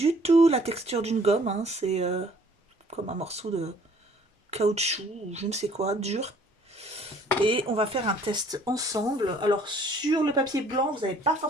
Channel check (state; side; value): normal; both; correlation 0.58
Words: tout la texture d'une gomme. Hein. C'est comme un morceau de caoutchouc ou je ne sais quoi, dur. Et on va faire un test ensemble. Alors sur le papier blanc, vous n'allez pas